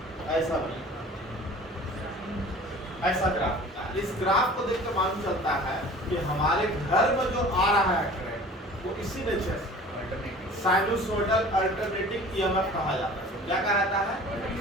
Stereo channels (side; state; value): both; normal; correlation 0.44